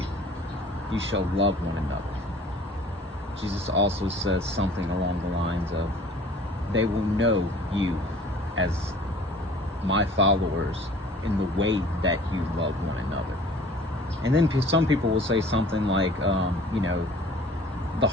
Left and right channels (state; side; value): normal; both; correlation 0.49